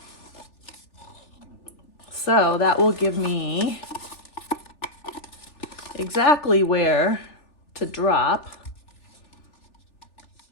So that will give me exactly where to drop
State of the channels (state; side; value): late; right; 3.4 ms